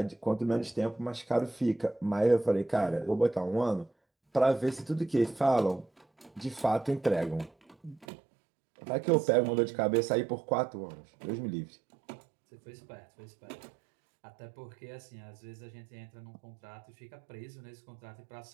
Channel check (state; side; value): drops out; left; at 8.1 s